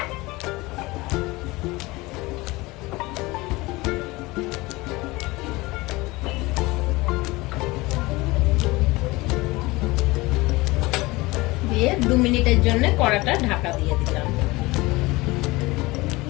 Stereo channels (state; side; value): quieter; right; 21.8 dB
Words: দিয়ে 2 মিনিটের জন্য কড়াটা ঢাকা দিয়ে দিলাম।